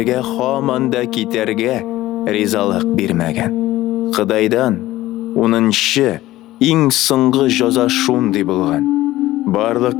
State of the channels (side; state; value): right; quieter; 16.2 dB